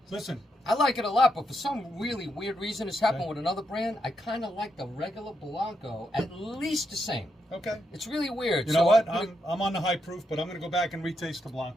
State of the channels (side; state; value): both; normal; correlation 0.81